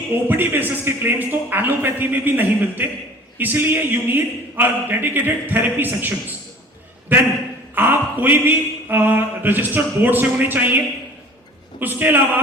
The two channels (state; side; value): normal; both; correlation 0.46